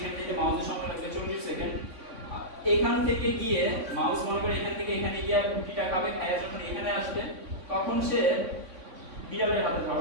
যেতে মাউসের সময় লাগবে 40 সেকেন্ড। এখান থেকে গিয়ে মাউস মনে করে এখান থেকে এখানে গিয়ে রুটিটা খাবে, খায়া যখন এখানে আসবে তখন সে বিড়ালের হাতে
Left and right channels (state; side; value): late; left; 3.5 ms